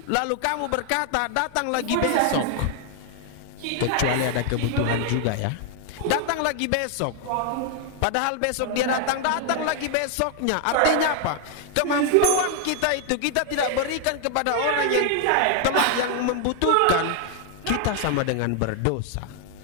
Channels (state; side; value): different; both; correlation 0.00